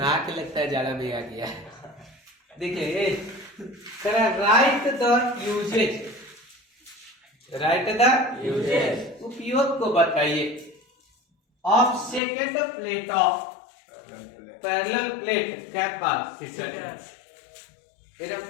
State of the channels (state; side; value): drops out; right; at 12.2 s